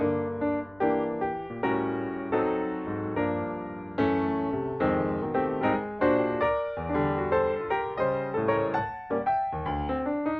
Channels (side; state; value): right; noise; rumble, 27 dB below the sound